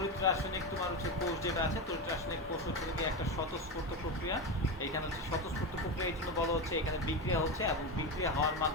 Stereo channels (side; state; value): both; normal; correlation 0.16